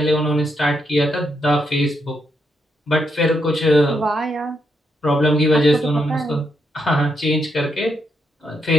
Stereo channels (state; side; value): normal; both; correlation 0.80